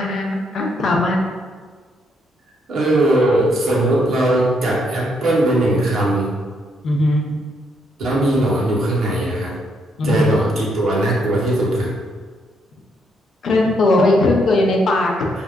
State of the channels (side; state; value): both; normal; correlation 0.74